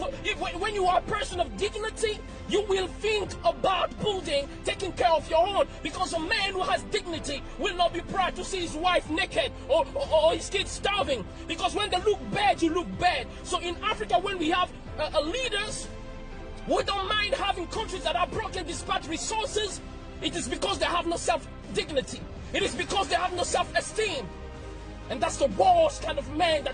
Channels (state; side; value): identical; both; correlation 1.00